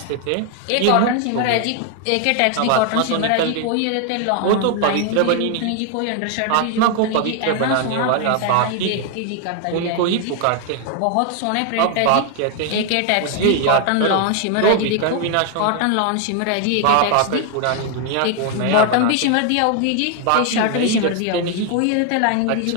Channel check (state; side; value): different; both; correlation 0.00